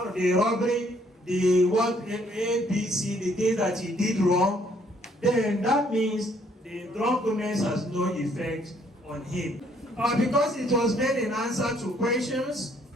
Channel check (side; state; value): both; normal; correlation 0.65